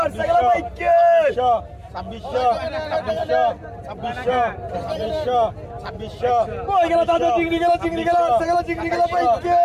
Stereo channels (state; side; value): identical; both; correlation 1.00